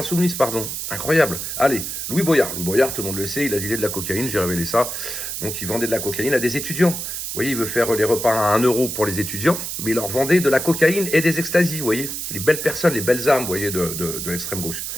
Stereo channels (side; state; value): right; noise; hiss, 5 dB below the sound